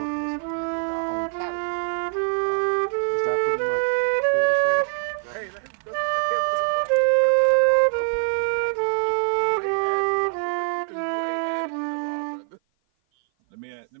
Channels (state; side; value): silent; left; 56 dB below the other